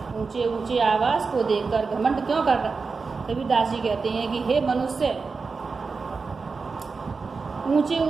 ऊंचे ऊंचे आवास को देखकर घमंड क्यों कर रहा? कबीरदास जी कहते हैं कि हे मनुष्य, ऊंचे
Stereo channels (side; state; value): left; quieter; 4.6 dB